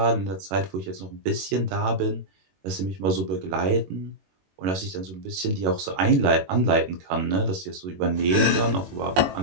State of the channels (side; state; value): left; late; 21 ms